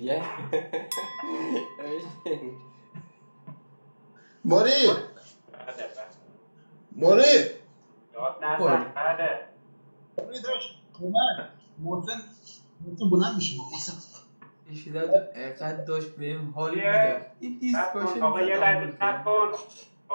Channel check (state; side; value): inverted; both; correlation -1.00